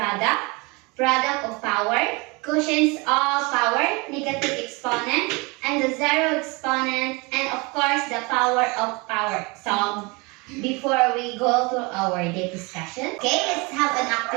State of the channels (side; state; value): left; quieter; 27.3 dB